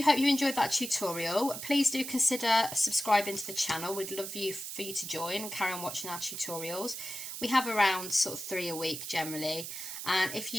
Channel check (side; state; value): right; noise; hiss, 7 dB below the sound